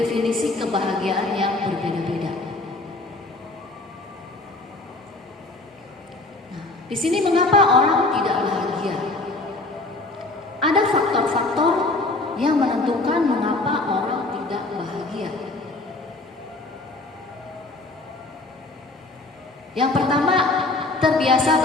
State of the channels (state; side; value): quieter; right; 3.1 dB